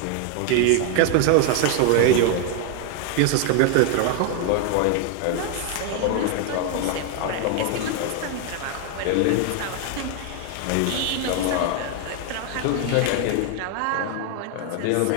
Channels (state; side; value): different; both; correlation 0.00